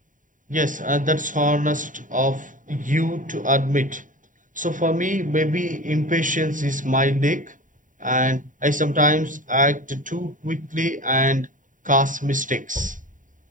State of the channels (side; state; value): left; late; 0.38 ms